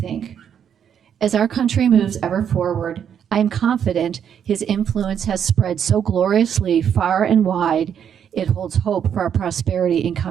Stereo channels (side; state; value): left; quieter; 8.5 dB